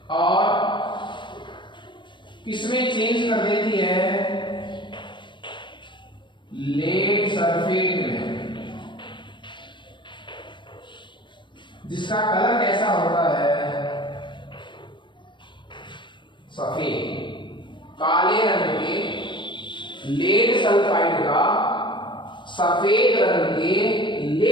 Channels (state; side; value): late; right; 0.23 ms